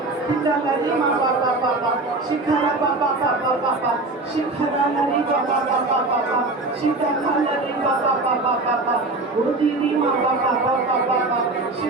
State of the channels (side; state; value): left; quieter; 3.1 dB